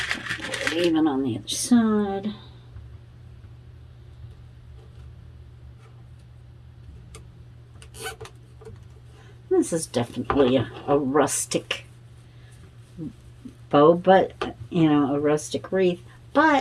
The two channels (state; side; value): identical; both; correlation 1.00